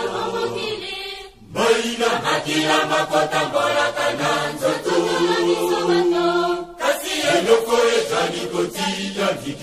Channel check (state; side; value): identical; both; correlation 1.00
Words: Maina makila makota mbolaka na nzoto kasi eloko ezali kotia